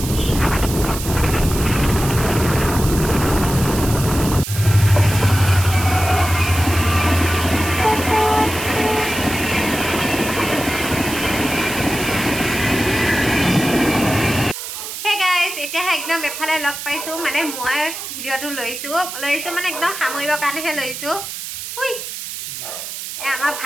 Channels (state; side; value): noise; right; hiss, 8 dB below the sound